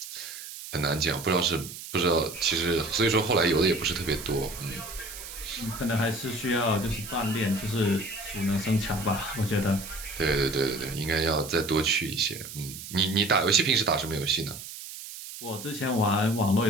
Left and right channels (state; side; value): noise; right; hiss, 11 dB below the sound